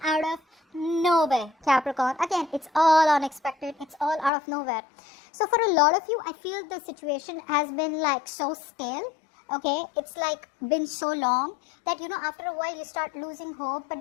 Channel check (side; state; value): right; drops out; at 4.3 s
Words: out of nowhere, Capricorn. Again, it's all unexpected. It's all out of nowhere. So for a lot of you, I feel the situation has been like so stale. Okay, it's like been so long that, after a while you start losing hope. But